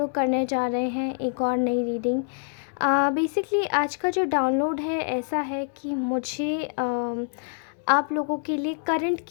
करने जा रहे हैं एक और नई रीडिंग. बेसिकली आज का जो डाउनलोड है ऐसा है कि मुझे आप लोगों के लिए करंट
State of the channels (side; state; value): right; silent; digital silence